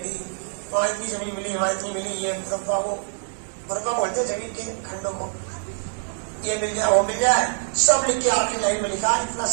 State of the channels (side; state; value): left; silent; 60 dB below the other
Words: वहां इतनी जमीन मिली, वहां इतनी मिली, ये मुरब्बा वो मुरब्बा बोलते जमीन के खंडों को, ये मिल जाए वो मिल जाए, सब लिख के आखिरी लाइन में लिखा, इतना